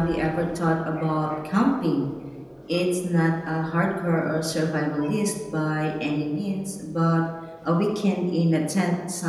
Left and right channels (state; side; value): identical; both; correlation 1.00